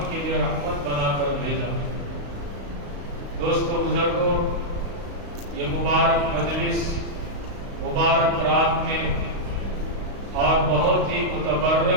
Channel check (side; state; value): left; late; 35 ms